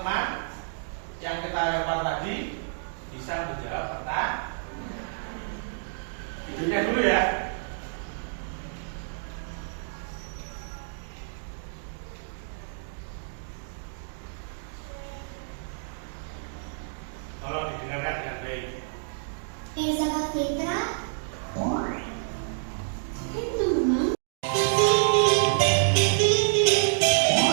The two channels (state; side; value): silent; left; digital silence